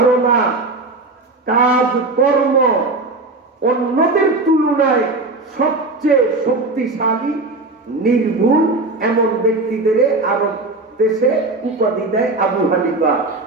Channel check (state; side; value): quieter; left; 3.2 dB